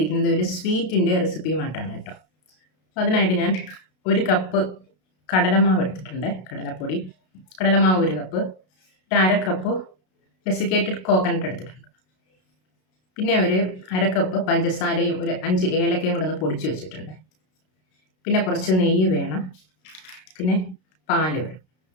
ഒരു സ്വീറ്റിൻ്റെ റെസിപ്പിയുമായിട്ടാണ് കേട്ടോ. അപ്പോൾ അതിനായിട്ട് ഞാൻ ഒരു കപ്പ് കടലമാവ് എടുത്തിട്ടുണ്ട്, കടലപ്പൊടി. കടലമാവ് ഒരു കപ്പ്, ഒരു അര കപ്പ് ഡെസിക്കേറ്റഡ് കോക്കനട്ട് എടുത്തിട്ടുണ്ട്. പിന്നെ ഒരു അര കപ്പ് പഞ്ചസാരയും ഒരു 5 ഏലക്കയും കൂടെ ഒന്ന് പൊടിച്ച് വെച്ചിട്ടുണ്ട്. പിന്നെ കുറച്ച് നെയ്യ് വേണം, പിന്നെ പാല് വേണം.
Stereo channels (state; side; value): late; right; 32 ms